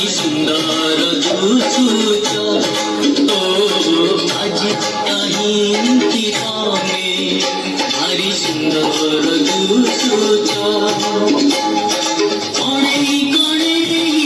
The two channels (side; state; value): both; identical; correlation 1.00